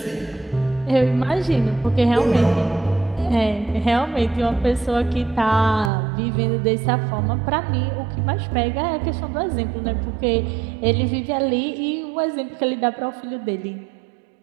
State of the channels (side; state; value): left; drops out; at 5.9 s